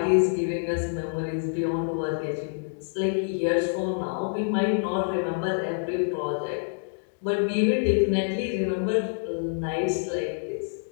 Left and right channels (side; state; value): right; silent; digital silence